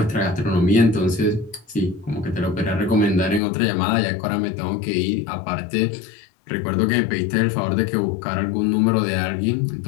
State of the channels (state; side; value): drops out; right; at 3.4 s